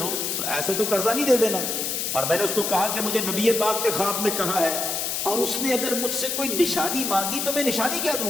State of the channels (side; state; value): left; noise; hiss, 1 dB below the sound